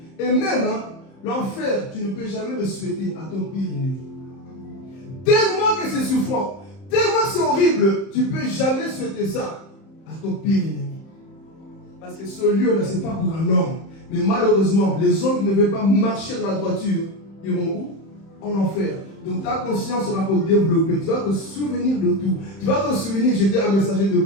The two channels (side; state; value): right; late; 31 ms